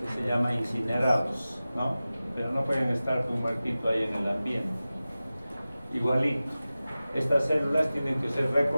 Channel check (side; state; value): both; inverted; correlation -0.96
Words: se llama incinerados, ¿no? Pero no pueden estar un muertito ahí en el ambiente. Igualito, estas células tienen que ser